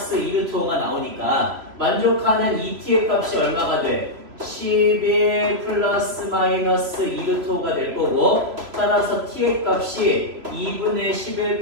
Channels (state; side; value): late; left; 3.0 ms